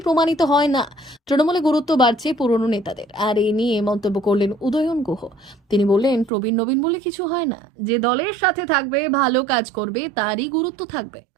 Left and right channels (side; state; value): left; drops out; at 6.3 s